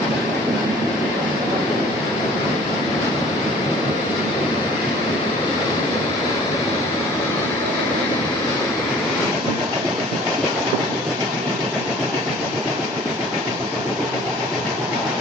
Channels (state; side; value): normal; both; correlation 0.51